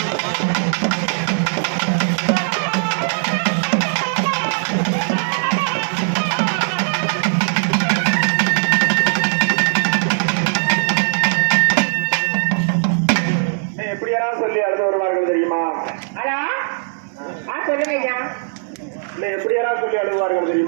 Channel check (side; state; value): left; silent; digital silence